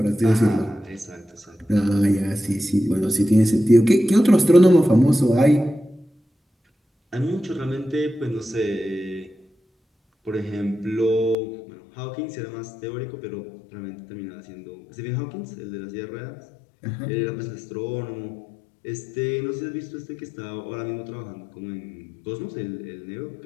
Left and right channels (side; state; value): right; drops out; at 11.4 s